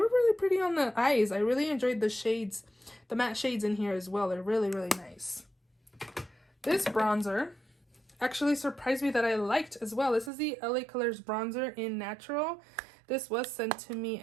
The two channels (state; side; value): drops out; left; at 10.3 s